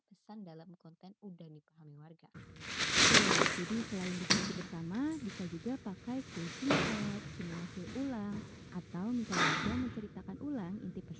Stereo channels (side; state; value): both; identical; correlation 1.00